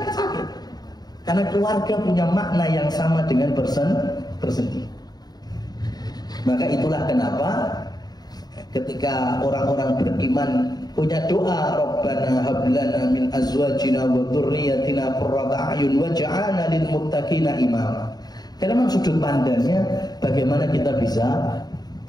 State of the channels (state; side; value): late; right; 0.19 ms